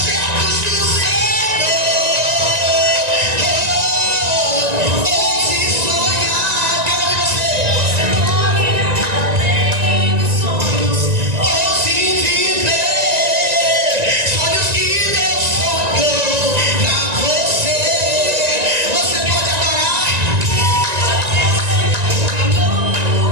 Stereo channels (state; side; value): late; left; 1.9 ms